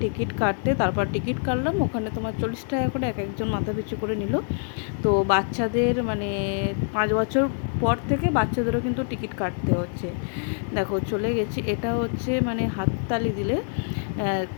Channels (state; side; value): silent; right; 61 dB below the other